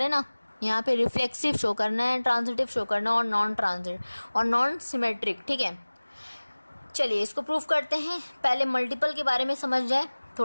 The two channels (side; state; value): both; inverted; correlation -1.00